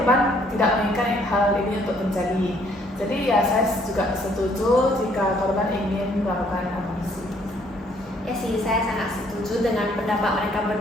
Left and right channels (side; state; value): both; normal; correlation 0.64